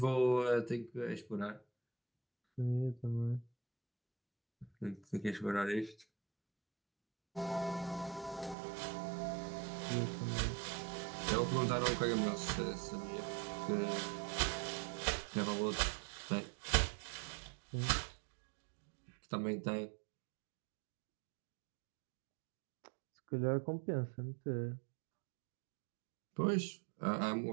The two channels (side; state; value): left; drops out; at 8.6 s